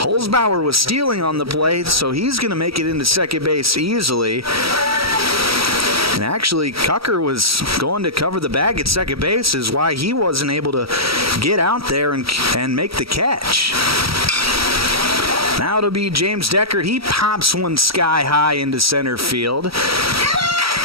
was stealing on the play, so he's going to make it into second base easily. And actually, Cucker was going to cover the bag at second base, is why he wasn't able to get out there and make the catch. Now it'll be James Deckard. He pops one sky high into center field.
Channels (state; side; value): late; left; 0.76 ms